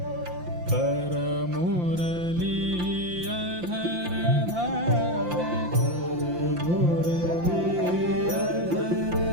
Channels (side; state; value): left; late; 5.8 ms